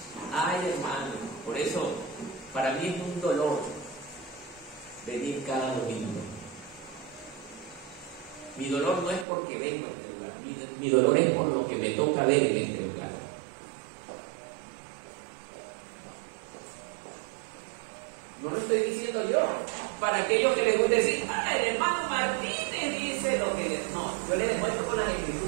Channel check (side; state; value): left; drops out; at 9.2 s